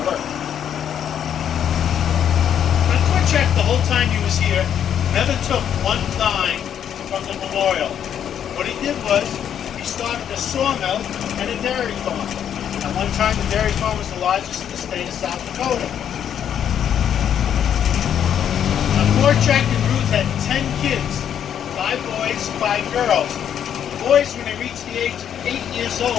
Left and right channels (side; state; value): right; quieter; 9.2 dB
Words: work. Now Korchak, the whole time he was here, never took one dime from the memorial. What he did was, he started a sawmill and a dairy farm. At one time, the dairy farm was the largest in the state of South Dakota. Now Korchak and Ruth had 10 kids, 5 boys, 5 girls. The boys, when they reached the age of 8 years